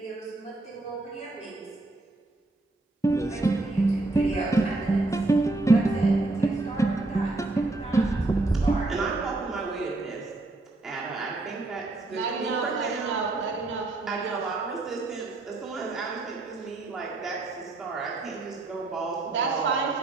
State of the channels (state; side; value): quieter; left; 3.0 dB